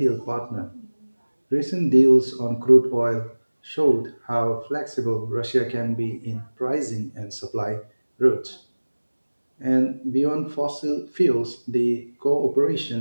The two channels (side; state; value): both; inverted; correlation -1.00